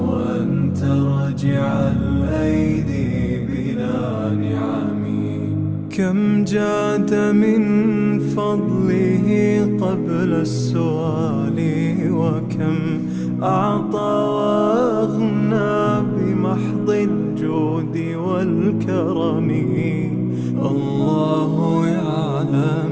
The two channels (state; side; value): identical; both; correlation 1.00